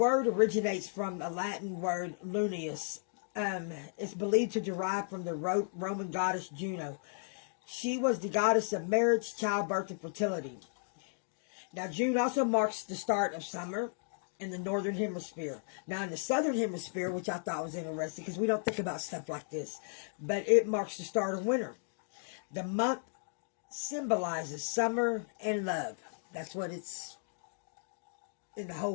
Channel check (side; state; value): right; silent; digital silence